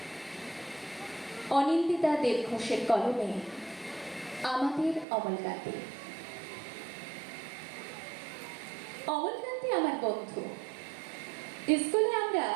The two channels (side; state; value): left; drops out; at 5.1 s